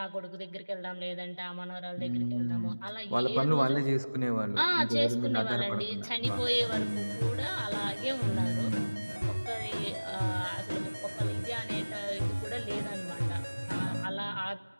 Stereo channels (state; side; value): inverted; both; correlation -1.00